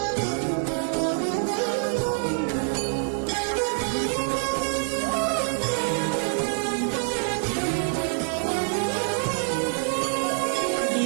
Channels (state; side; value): silent; left; 61 dB below the other